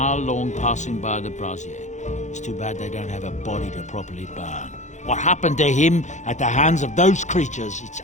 long passing by the brazier. It's too bad they don't have a body to properly burn. What happened to him at the hands of those creatures, it's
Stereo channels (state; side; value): late; right; 0.35 ms